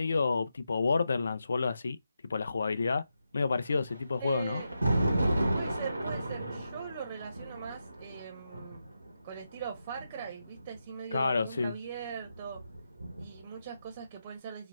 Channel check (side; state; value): both; inverted; correlation -0.86